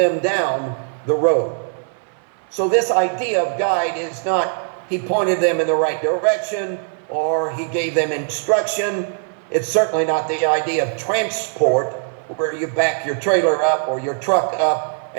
down the road. So this idea of guide is not he pointed them in the right direction or he gave them instruction. It's certainly not the idea of transport, where you back your trailer up or your truck up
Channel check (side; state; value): left; silent; 61 dB below the other